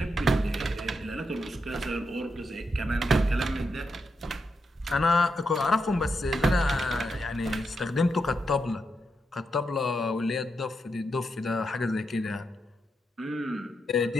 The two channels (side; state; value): both; normal; correlation 0.84